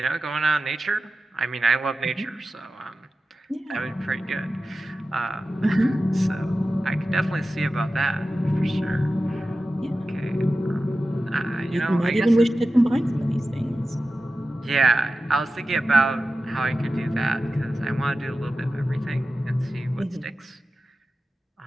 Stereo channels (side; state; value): both; normal; correlation 0.93